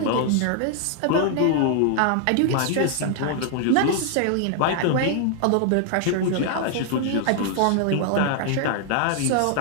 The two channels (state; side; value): different; both; correlation 0.00